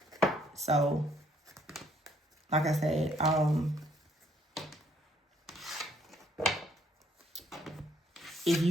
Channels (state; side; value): normal; both; correlation 0.66